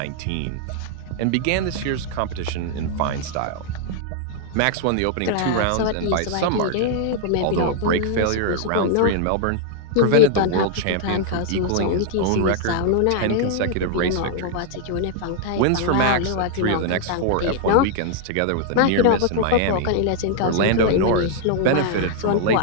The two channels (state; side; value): different; both; correlation 0.00